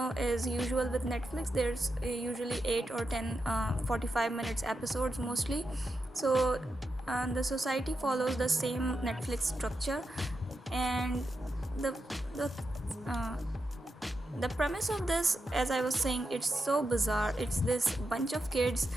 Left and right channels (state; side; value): normal; both; correlation 0.87